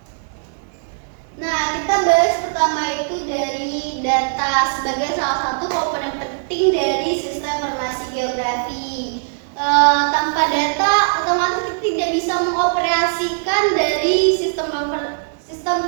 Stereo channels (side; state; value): left; silent; digital silence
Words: kita bahas pertama itu dari data sebagai salah satu komponen penting dari sistem informasi geografi. Tanpa data, otomatis kita tidak bisa mengoperasikan dari sistem